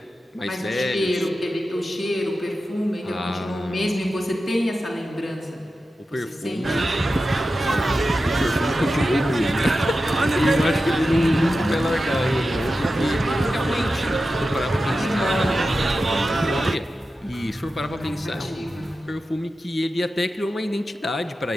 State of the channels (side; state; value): both; normal; correlation 0.92